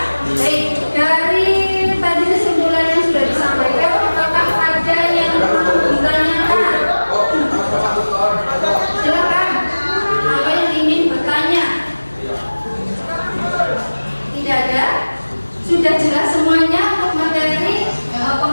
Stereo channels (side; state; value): both; inverted; correlation -1.00